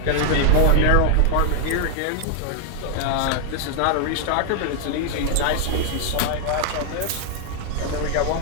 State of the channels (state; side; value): different; both; correlation 0.00